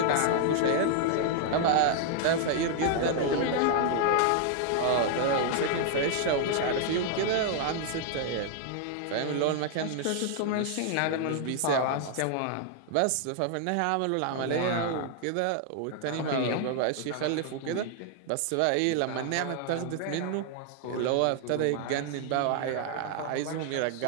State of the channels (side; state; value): both; different; correlation 0.00